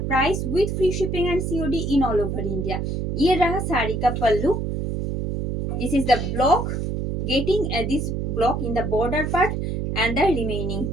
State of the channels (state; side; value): noise; right; hum, 2 dB below the sound